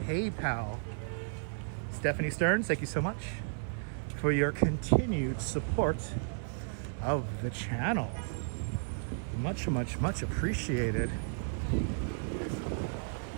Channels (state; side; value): silent; left; 56 dB below the other